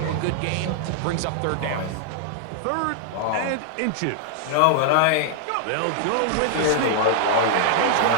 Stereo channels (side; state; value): both; different; correlation -0.01